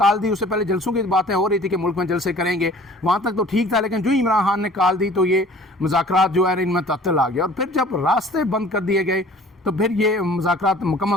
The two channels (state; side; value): normal; both; correlation 0.49